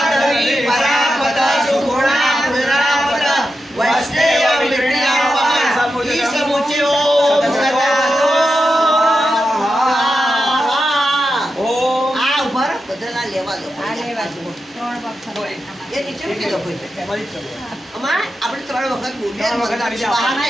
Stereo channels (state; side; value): normal; both; correlation 0.89